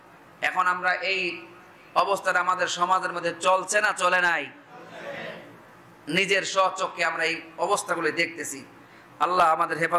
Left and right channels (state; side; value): identical; both; correlation 1.00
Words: এখন আমরা এই অবস্থাটা আমাদের সমাজের মধ্যে চলছে না চলে নাই? নিজের স্বচক্ষে আমরা এই অবস্থাগুলো দেখতেছি। আল্লাহ আমাদের